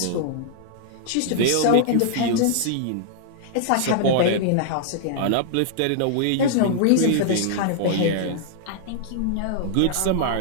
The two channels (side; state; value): both; different; correlation -0.01